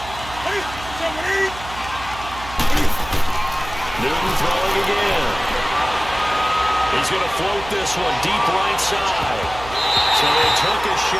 Newton throwing again. He's going to float this one deep right side. So they took a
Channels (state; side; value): noise; right; hum, 14 dB below the sound